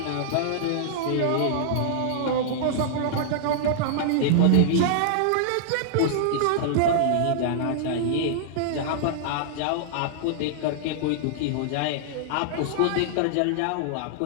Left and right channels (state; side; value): different; both; correlation -0.01